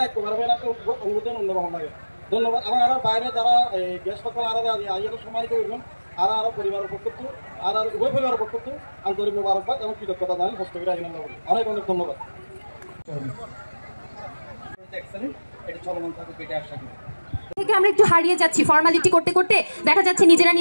এক অনুভূতি অন্যরকম লাগে। ধন্যবাদ। এবং আর বাইরে যারা গ্যাস পাত্র আর আইয়াকে সম্মানিত করবেন আর আরও পরিবারের পক্ষ আর উভয় পরিবারের পক্ষ আন্তরিক মোবারকবাদ এবং কৃতজ্ঞতা জানাই হস্তগিরি আইন অনেক অনেক ধন্যবাদ। এটা চলমান থাকে পেটে আশা করি থেকে আমরা একটু হারিয়ে যাচ্ছি ফর্মালিটি করতে করতে, দেখা যাচ্ছে নিজেরা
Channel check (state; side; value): inverted; both; correlation -1.00